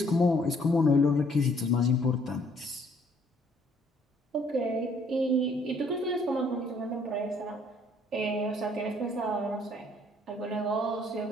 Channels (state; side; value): normal; both; correlation 0.63